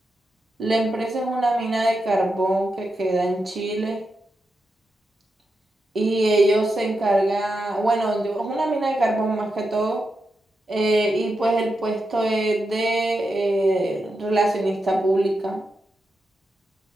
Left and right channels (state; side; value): normal; both; correlation 0.87